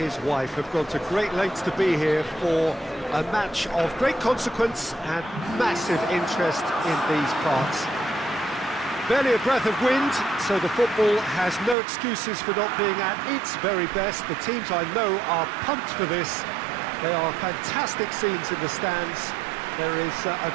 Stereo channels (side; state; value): left; drops out; at 11.8 s